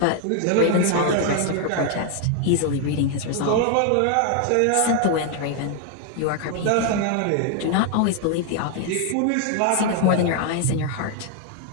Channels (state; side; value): different; both; correlation 0.00